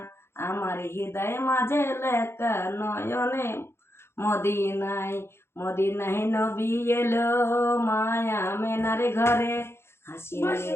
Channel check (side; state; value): right; late; 0.12 ms